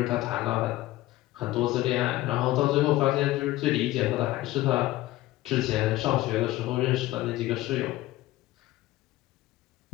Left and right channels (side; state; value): right; quieter; 16.9 dB